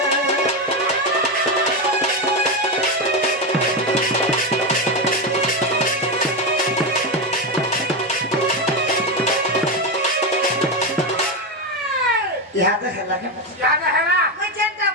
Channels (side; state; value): both; normal; correlation 0.12